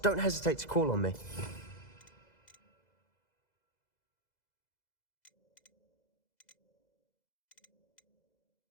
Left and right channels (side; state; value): right; late; 2.0 ms